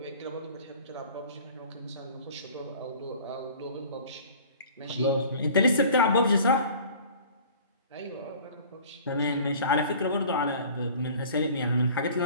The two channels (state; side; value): inverted; both; correlation -0.46